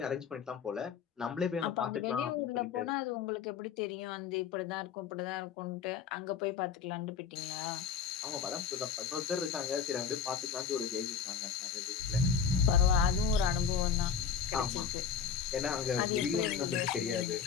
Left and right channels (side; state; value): right; quieter; 6.9 dB